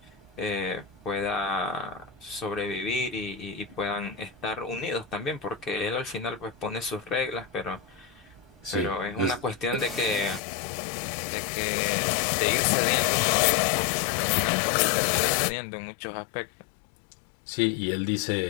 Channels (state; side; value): drops out; right; at 10.4 s